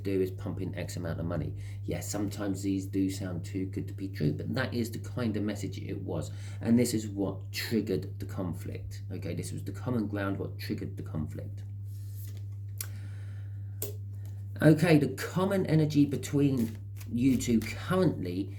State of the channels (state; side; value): identical; both; correlation 1.00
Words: is pump in X amount of money. Yes, sometimes these do sound too good to be true, but that is the kind of message it was. And this is what triggered the conflict. Okay, this was the common ground, what triggered the conflict. Okay, the common energy between you two currently